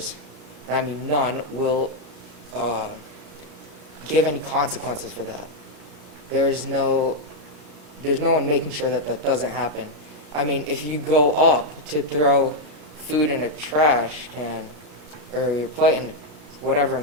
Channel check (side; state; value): left; late; 33 ms